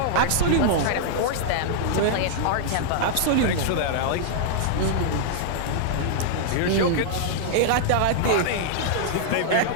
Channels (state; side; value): different; both; correlation -0.01